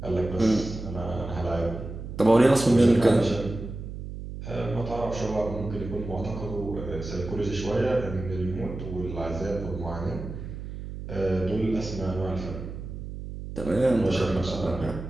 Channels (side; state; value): right; noise; hum, 9 dB below the sound